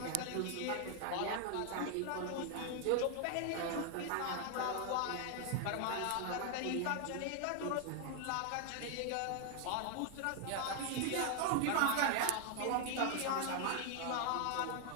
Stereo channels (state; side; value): different; both; correlation 0.00